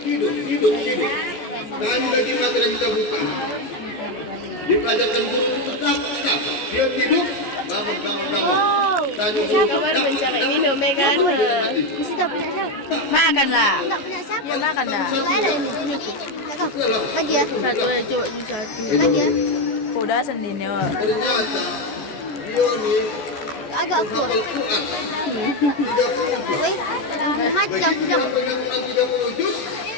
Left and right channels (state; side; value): late; right; 15 ms